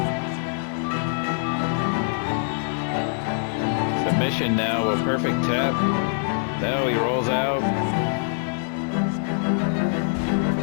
Submission now, a perfect tap. Now he rolls out.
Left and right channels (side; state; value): right; silent; 62 dB below the other